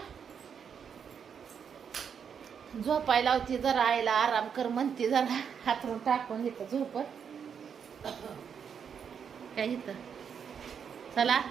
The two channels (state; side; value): quieter; left; 7.2 dB